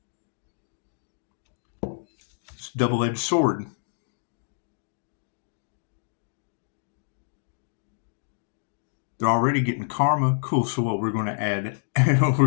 It's a double-edged sword. They're already getting karma. Cool. So what? We're going to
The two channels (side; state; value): right; silent; digital silence